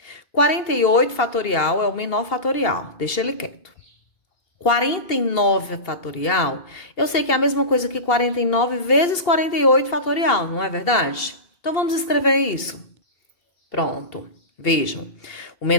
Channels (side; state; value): right; late; 2.8 ms